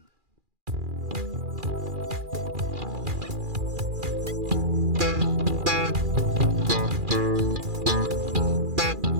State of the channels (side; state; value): left; late; 2.4 ms